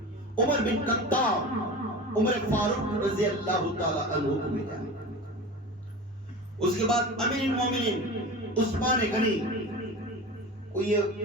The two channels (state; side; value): normal; both; correlation 0.32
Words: عمر بن خطاب, عمر فاروق رضی اللہ تعالی عنہ کو ملا. اس کے بعد امیر المومنین عثمان غنی کو یہ